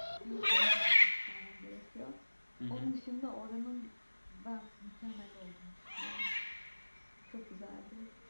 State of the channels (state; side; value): inverted; both; correlation -1.00